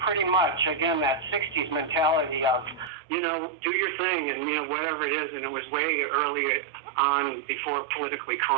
much, again, that 60s mentality of, do your thing and, whatever it is, and it was way early on before politically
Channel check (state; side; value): drops out; left; at 2.9 s